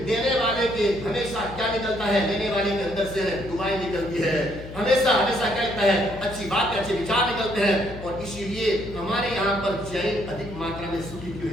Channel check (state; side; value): noise; left; hum, 13 dB below the sound